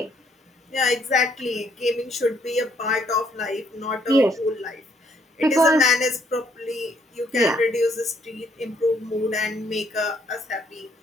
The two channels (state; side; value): normal; both; correlation 0.69